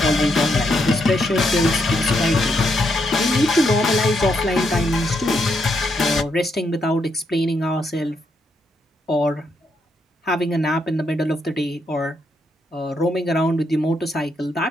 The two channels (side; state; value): both; normal; correlation 0.78